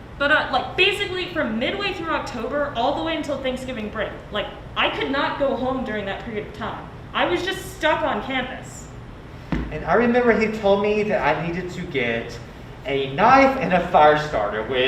But like basically from midway through October all the way until Thanksgiving break, like I could not go home during that period of time. I was just stuck on campus. And I remember he told me that I needed to get a knife and a fire starter,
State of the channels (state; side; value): identical; both; correlation 1.00